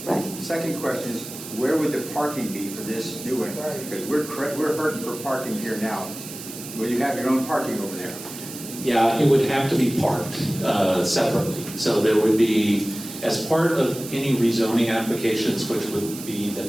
Right. Second question is, where would the parking be for this new one? Because we're hurting for parking here now. Will you have your own parking over there? Yeah, it would have to be parked separately. So there would be, as part of any rezoning applications, which would be the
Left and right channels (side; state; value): right; noise; hiss, 12 dB below the sound